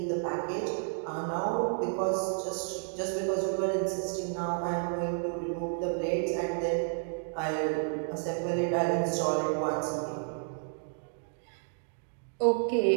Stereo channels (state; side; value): silent; left; digital silence